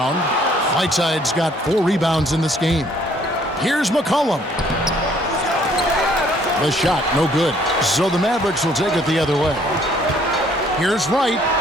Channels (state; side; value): normal; both; correlation 0.62